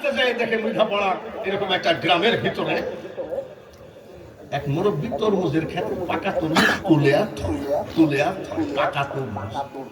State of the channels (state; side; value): identical; both; correlation 1.00